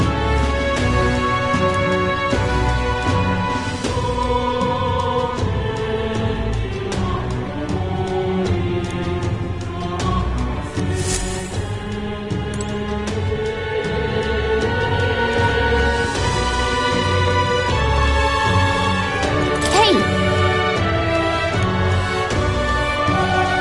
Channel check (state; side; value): identical; both; correlation 1.00